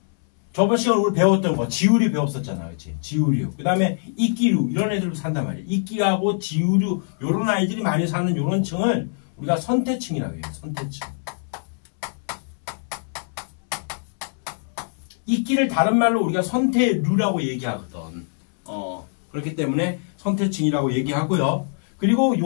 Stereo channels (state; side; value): silent; right; 61 dB below the other